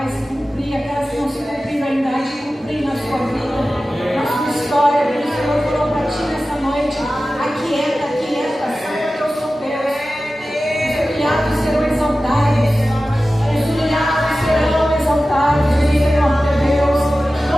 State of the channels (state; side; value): normal; both; correlation 0.95